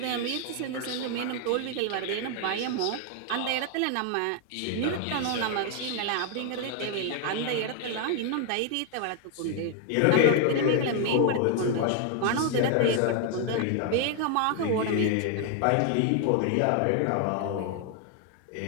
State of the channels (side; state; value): both; different; correlation 0.00